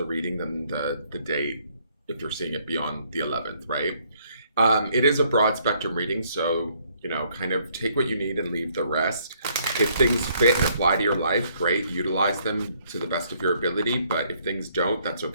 reading than the date if you're seeing it beyond the 11th, right? It is a broad spectrum reading, so, kind of take what you need and leave the rest. If things fit and apply to your life, great, utilize them to the best of your ability. But if things don't, that's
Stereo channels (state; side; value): inverted; both; correlation -0.67